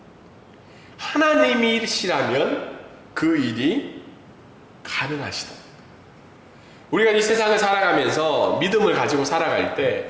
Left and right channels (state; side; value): identical; both; correlation 1.00